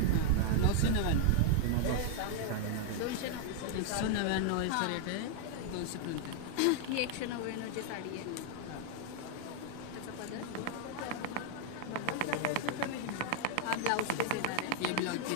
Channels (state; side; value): different; both; correlation 0.00